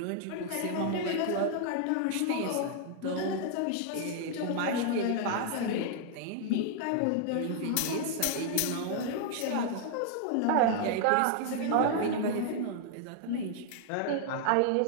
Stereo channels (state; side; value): different; both; correlation 0.00